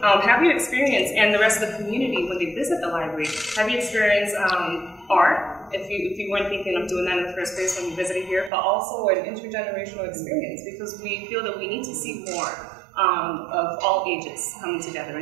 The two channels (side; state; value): left; drops out; at 8.5 s